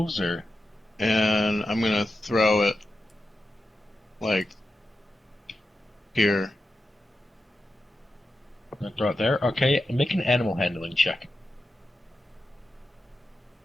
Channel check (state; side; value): normal; both; correlation 0.90